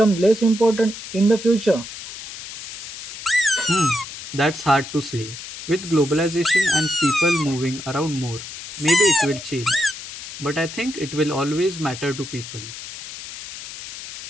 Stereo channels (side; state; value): left; noise; hiss, 11 dB below the sound